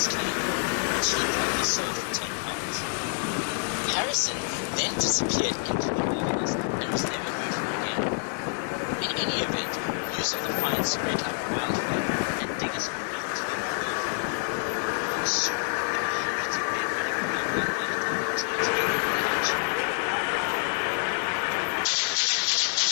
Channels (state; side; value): silent; right; 59 dB below the other